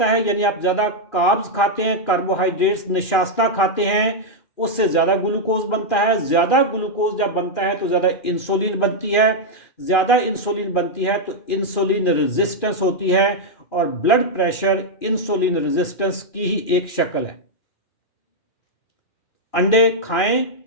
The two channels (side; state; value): right; late; 2.4 ms